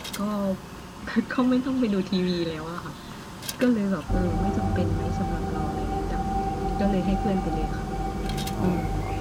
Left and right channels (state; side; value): identical; both; correlation 1.00